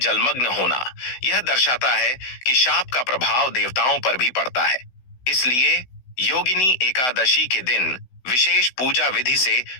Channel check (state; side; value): late; right; 16 ms